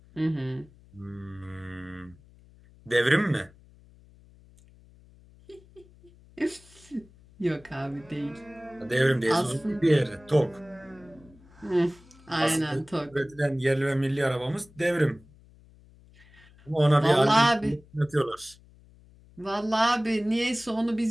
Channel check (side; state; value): left; noise; hum, 26 dB below the sound